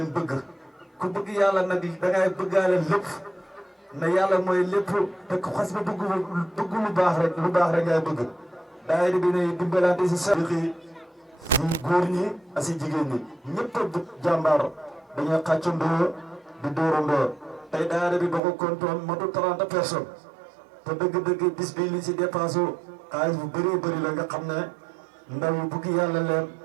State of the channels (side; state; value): left; drops out; at 18.4 s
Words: bëgg ku bëgg yàlla nag dangay bëggaale lépp na yàlla mooy lépp te ku xas ba bëgg lu baax rek ngay bëgg daayira bi ne dimbalante si Siddiqi si góor ñi ak si jigéen ñi ñëpp a jàmbaar dañuy xàccandoo di dóorandoo tey daayira bi boo ko kontoon motu 30 personnes te dëgg-dëgg bis bi li si dépensé xaalis bu bëree bëri la nga xam ne ndaw yi bugg yàlla leen